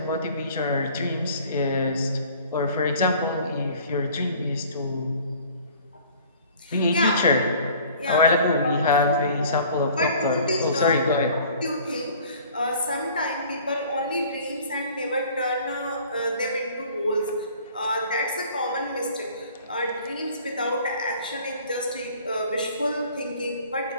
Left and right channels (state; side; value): inverted; both; correlation -0.50